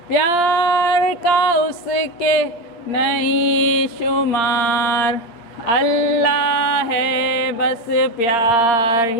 प्यार का उसके नहीं शुमार, अल्लाह है बस प्यार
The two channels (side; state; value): right; late; 8.6 ms